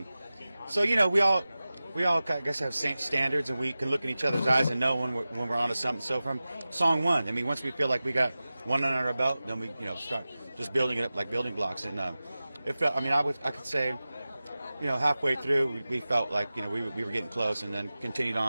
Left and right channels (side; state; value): both; inverted; correlation -0.96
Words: So, you know, we all, I guess, have same standards, and we can look in each other's eyes and know when we're onto something. So from song one, I mean, once we feel like we got one under our belt, then we, you know, start just building it up like building blocks. And it felt, I mean, I could say, you know, halfway through, we felt like, you know, we were getting close, and then continued